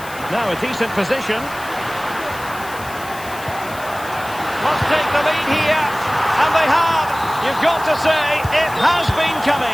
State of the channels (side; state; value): left; noise; hiss, 17 dB below the sound